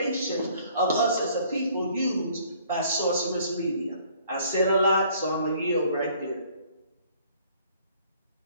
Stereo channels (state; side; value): inverted; both; correlation -0.59